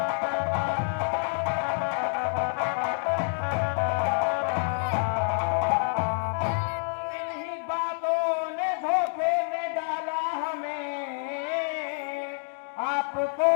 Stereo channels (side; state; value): right; silent; 60 dB below the other